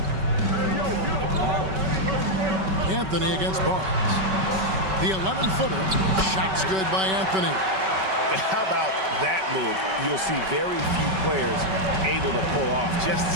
Anthony against Barnes. The 11-footer. Shot's good by Anthony. How about that move? You'll see very few players able to pull off. Just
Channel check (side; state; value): left; late; 5.3 ms